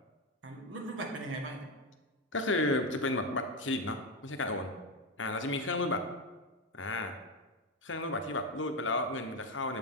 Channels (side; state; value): both; normal; correlation 0.11